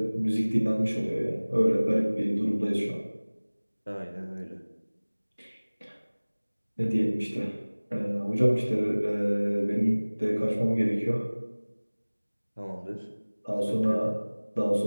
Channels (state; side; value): inverted; both; correlation -1.00